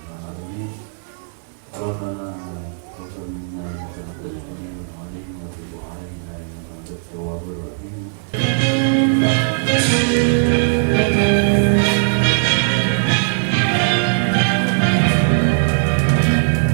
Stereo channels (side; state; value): left; silent; digital silence